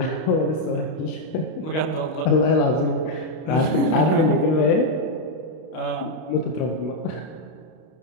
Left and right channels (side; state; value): right; late; 32 ms